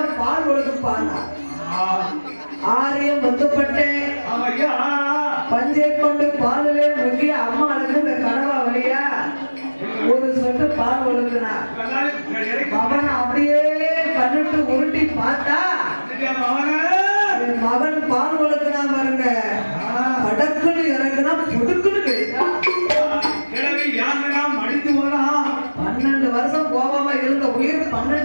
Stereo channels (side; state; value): both; inverted; correlation -1.00